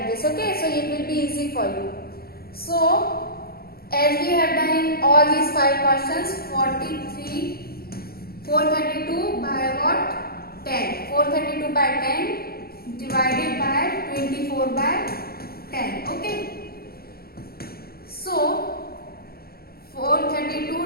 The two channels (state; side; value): late; right; 0.44 ms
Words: this. Okay, so it will be easy for you. So as we have done in all these 5 questions, 432 by what? 10. 432 by 10 divided by 24 by 10. Okay. So